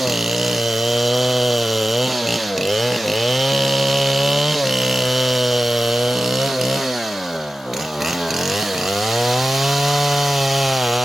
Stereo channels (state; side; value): normal; both; correlation 0.94